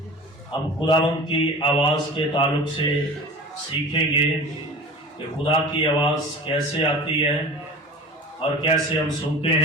ہم خداوند کی آواز کے تعلق سے سیکھیں گے کہ خدا کی آواز کیسے آتی ہے اور کیسے ہم سنتے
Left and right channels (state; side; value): normal; both; correlation 0.37